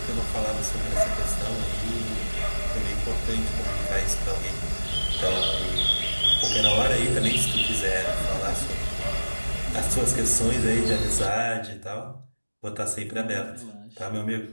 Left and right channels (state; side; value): inverted; both; correlation -1.00